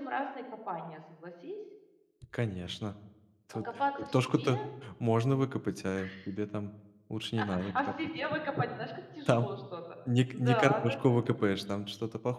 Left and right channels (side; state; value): both; identical; correlation 1.00